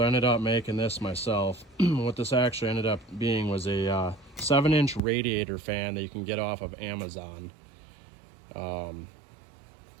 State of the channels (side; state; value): left; drops out; at 5.0 s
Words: I ended up making this myself. What this actually ended up being was a 7-inch radiator fan that you can get off of Amazon.